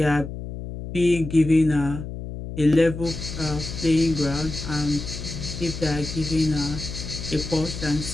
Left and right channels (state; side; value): noise; left; hum, 8 dB below the sound